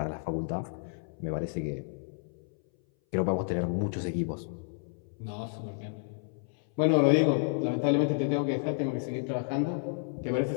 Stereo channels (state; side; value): silent; right; 57 dB below the other